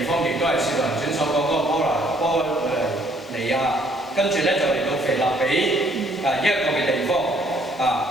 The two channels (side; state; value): left; noise; hiss, 28 dB below the sound